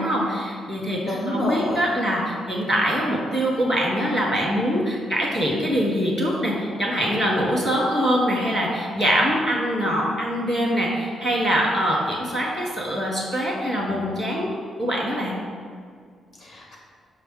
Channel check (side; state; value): both; normal; correlation 0.75